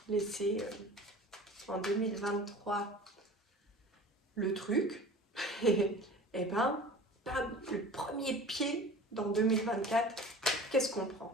laissé en 2023 le truc, et ben, le premier pied dans 2024, qu'est-ce qu'on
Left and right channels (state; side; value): normal; both; correlation 0.40